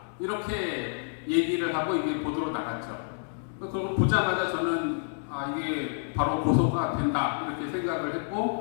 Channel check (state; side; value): silent; right; digital silence